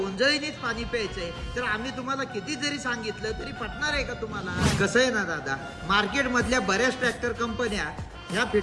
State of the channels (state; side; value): identical; both; correlation 1.00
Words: पाणी प्यायचंय तर आम्ही तुम्हाला किती जरी सांगितलं तरी पटणार आहे का तुम्हाला? कसं आहे ना दादा, मार्केट मधल्या बऱ्याच ट्रॅक्टर कंपन्या ह्या